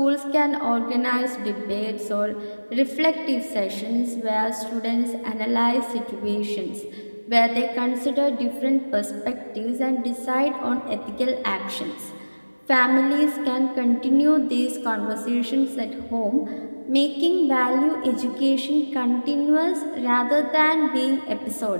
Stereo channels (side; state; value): both; inverted; correlation -1.00